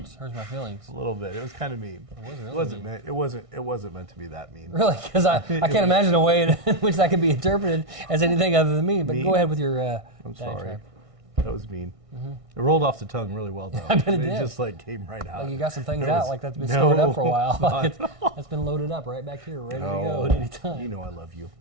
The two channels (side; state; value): left; late; 1.6 ms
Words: Hurts my feelings. A little bit. It was kind of mean. It wasn't meant. It wasn't meant to be that mean. Really? Because I can't imagine a way in which that could be interpreted as anything other than mean. But go ahead with your. I'm sorry. That was mean. Mm-hmm. It rolled off the tongue really well, though. I bet it did. Just came right out. Like you got some things out like that's been stored up for a while. Like that's been loaded up right back here, ready to go at any time. You know I love you.